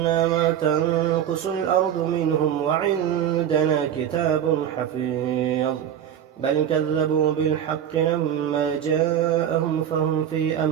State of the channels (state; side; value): quieter; left; 9.7 dB